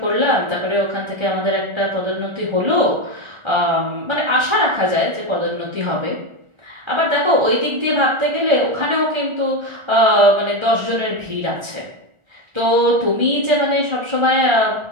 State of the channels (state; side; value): late; left; 1.4 ms